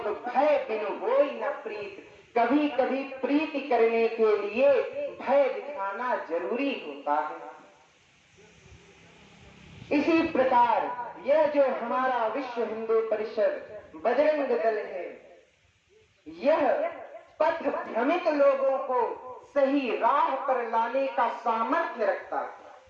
भय बिन होई न प्रीत। कभी कभी प्रीति करने के लिए भय दिखाना जरूरी होता है। इसी प्रकार यह जो हमारा विश्व हिंदू परिषद बजरंग दल है, यह पथ भ्रमित लोगों को सही राह पर लाने का सामर्थ्य रखता है।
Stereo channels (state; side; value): identical; both; correlation 1.00